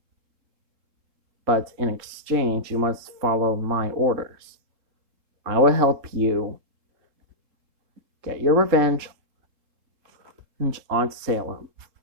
but in exchange, you must follow my orders. I will help you get your revenge on Salem.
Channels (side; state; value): left; late; 3.7 ms